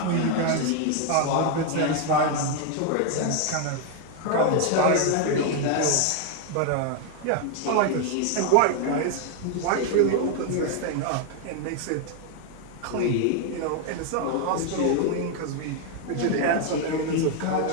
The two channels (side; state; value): both; different; correlation 0.00